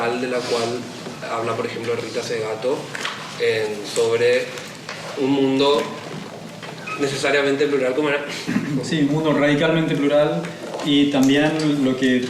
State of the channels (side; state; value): both; identical; correlation 1.00